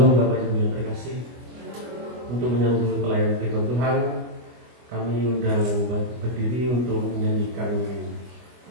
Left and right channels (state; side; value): late; left; 24 ms